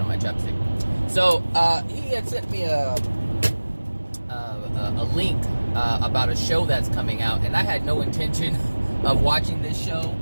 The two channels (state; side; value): inverted; both; correlation -1.00